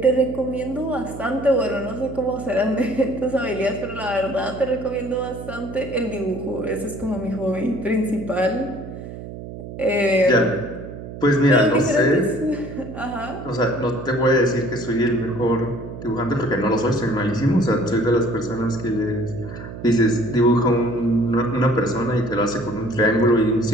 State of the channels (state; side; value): noise; right; hum, 11 dB below the sound